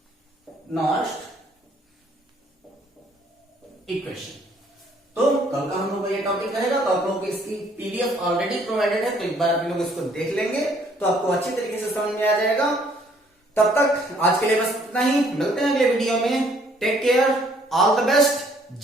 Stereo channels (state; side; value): normal; both; correlation 0.63